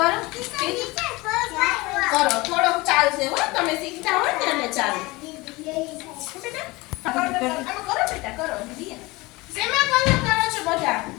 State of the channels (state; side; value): quieter; right; 22.5 dB